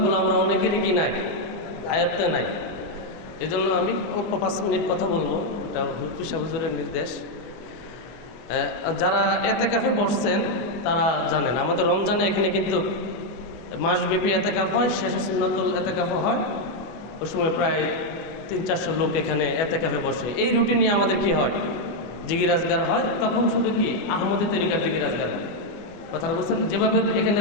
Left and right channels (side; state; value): right; late; 25 ms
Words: আমরা অনেকেরই কি নাই, আয়ত্তে নাই। এজন্য আমি 5 মিনিট কথা বলবো, এটা মুফতি সাহেব হুজুরের নির্দেশ। যারা এতেকাফে বসছেন তারা জানেন আমাদের রমজানে এখানে কিন্তু মাসব্যাপী এতেকাফ হয়, শেষে সুন্নতুল এতেকাফ হয়। ওই সময় প্রায় 300-400 লোক এখানে এতেকাফে বসে। এই রুটিনে আমাদের কি হয়, জিকির আজগার হয়। তখন শুধু কি আহমদি তরিকার জিকির আজগার হয়। কথাটা বলছেন, যেভাবে এখানে